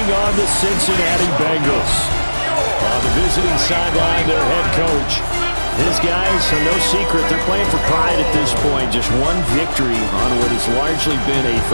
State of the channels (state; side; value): inverted; both; correlation -1.00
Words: on the Cincinnati Bengals. On the visiting sideline, their head coach. His guys are no secret. They're playing for pride at this point. Just one victory on what has largely been a